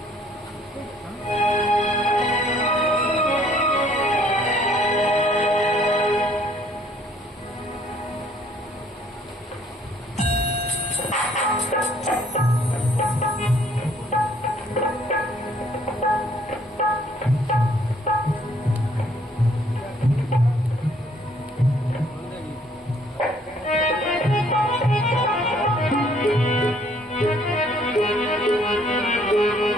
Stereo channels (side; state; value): both; normal; correlation 0.62